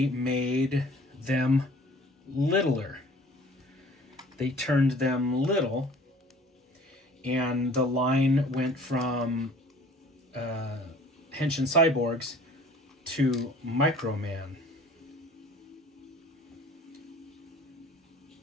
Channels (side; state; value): both; normal; correlation 0.50